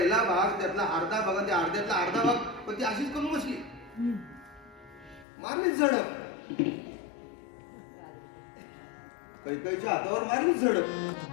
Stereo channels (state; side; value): drops out; right; at 5.2 s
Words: भाग, त्यातला अर्धा भाग, त्या अर्ध्यातला अर्धा भाग, पण ती अशीच करून बसली, मारलीच झडप. कैकेयीच्या हातावर मारलीच झडप.